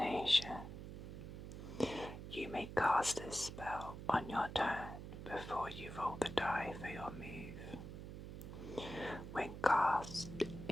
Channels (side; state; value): right; noise; hum, 9 dB below the sound